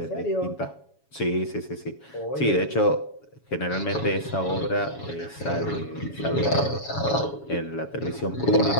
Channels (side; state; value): right; late; 7.1 ms